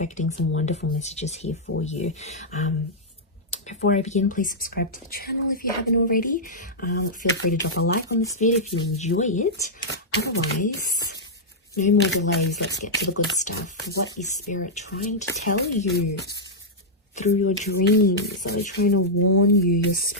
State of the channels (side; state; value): both; normal; correlation -0.08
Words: some wonderful messages here for you. Before I begin, please subscribe to the channel if you haven't already. Feel free to drop a like on this video if you enjoy it. Otherwise, no more delays. Let's get to the good stuff. What is Spirit trying to tell you through your dreams? Are they trying to warn you? Your